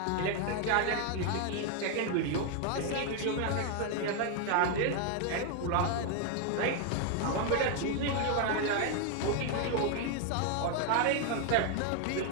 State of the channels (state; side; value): different; both; correlation 0.01